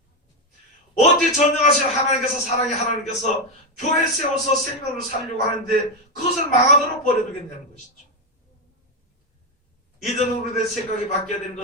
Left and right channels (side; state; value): both; normal; correlation 0.07